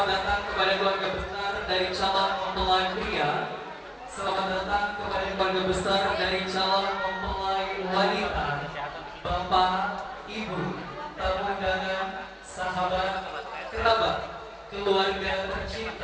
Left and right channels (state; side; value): identical; both; correlation 1.00